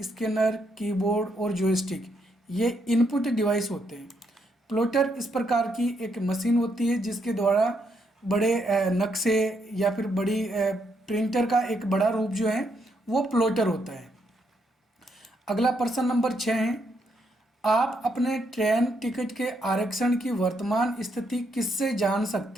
स्कैनर, कीबोर्ड और जॉयस्टिक, ये इनपुट डिवाइस होते हैं। प्लॉटर इस प्रकार की एक मशीन होती है जिसके द्वारा बड़े नक्शे या फिर बड़ी प्रिंटर का एक बड़ा रूप जो है वो प्लॉटर होता है। अगला प्रश्न नंबर 6 है, आप अपने ट्रेन टिकट के आरक्षण की वर्तमान स्थिति किससे जान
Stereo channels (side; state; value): both; normal; correlation 0.76